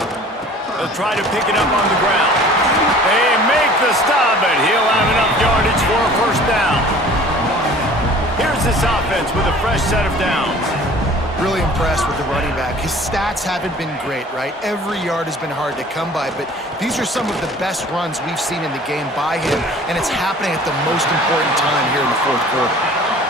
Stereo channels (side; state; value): both; normal; correlation 0.48